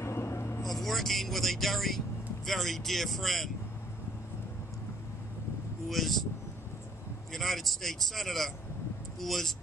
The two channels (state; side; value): normal; both; correlation 0.62